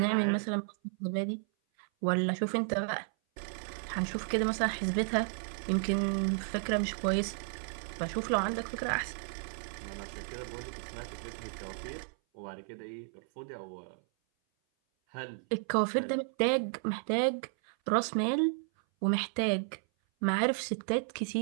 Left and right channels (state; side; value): silent; left; 56 dB below the other